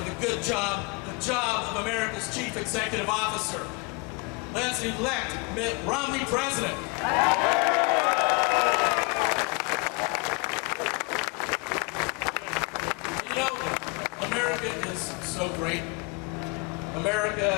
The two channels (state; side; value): quieter; right; 29.6 dB